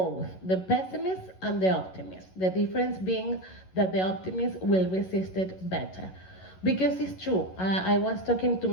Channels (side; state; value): right; late; 11 ms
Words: the pessimist and the optimist. The difference being that the optimist will resist it better. Because it's true. I was talking to